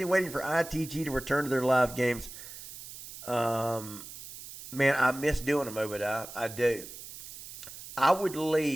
waiting for ITG to return to their live games. Man, I miss doing them, Obadiah. I do. I would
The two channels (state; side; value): noise; right; hiss, 14 dB below the sound